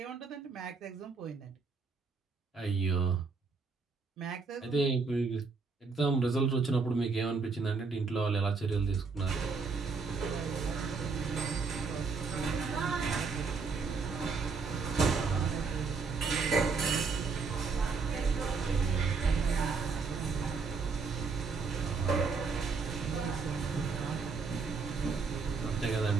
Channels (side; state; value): left; quieter; 4.7 dB